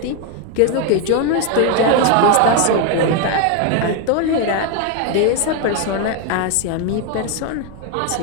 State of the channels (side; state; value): both; different; correlation 0.01